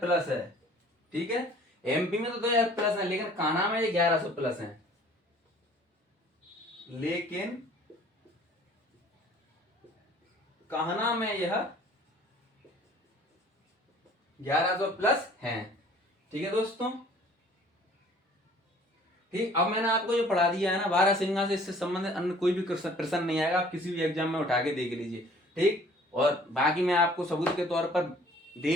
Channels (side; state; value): both; normal; correlation 0.53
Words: प्लस है, ठीक है। एमपी में तो 2000 प्लस है, लेकिन कान्हा में ये 1100 प्लस है। लेकिन कान्हा में यह 1100 प्लस है, ठीक है दोस्तों। ठीक, अब मैंने आपको जो पढ़ा दिया है ना बारहसिंगा से, इससे संबंधित अन्य कोई भी प्रश्न नहीं आएगा, आप किसी भी एग्जाम में उठा के देख लीजिए। ठीक, और बाकी मैं आपको सबूत के तौर पर